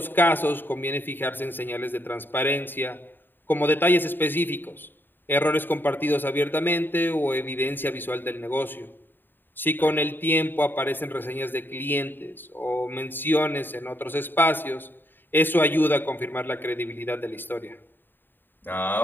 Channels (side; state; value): right; late; 0.094 ms